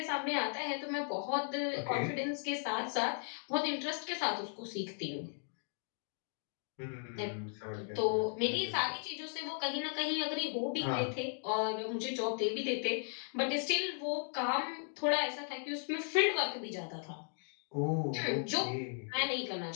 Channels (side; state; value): right; silent; 53 dB below the other